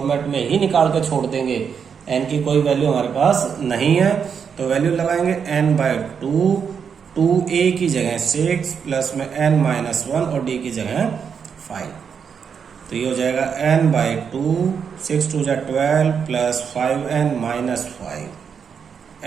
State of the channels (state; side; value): quieter; left; 6.8 dB